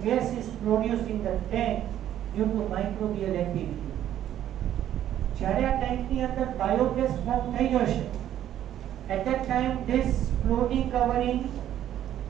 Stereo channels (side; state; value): left; quieter; 11.4 dB